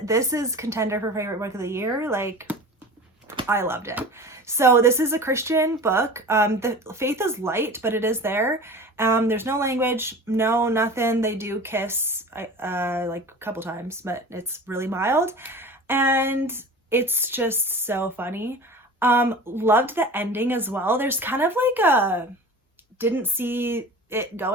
This is contender for favorite book of the year. Like, I loved it. So this is a Christian book. The faith is light, but it is there. There's no language, no nothing. They do kiss like a couple times, but it's really mild, and it's just so funny. Loved the ending as well. There's kind of like a didn't see it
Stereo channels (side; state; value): both; normal; correlation 0.37